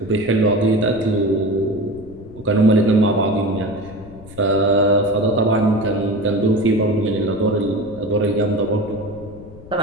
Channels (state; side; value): noise; left; rumble, 18 dB below the sound